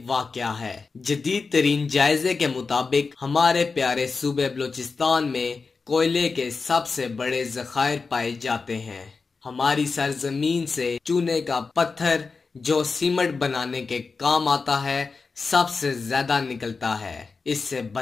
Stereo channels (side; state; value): right; quieter; 4.5 dB